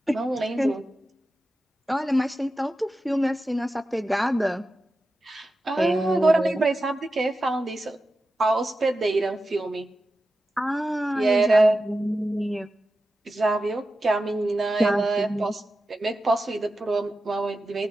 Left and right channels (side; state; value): both; normal; correlation 0.92